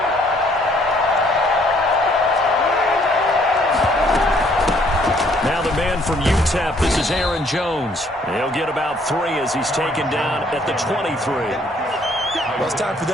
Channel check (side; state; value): both; normal; correlation 0.64